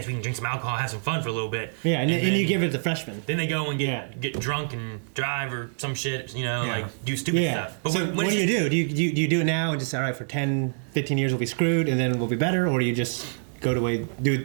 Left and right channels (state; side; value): silent; left; 59 dB below the other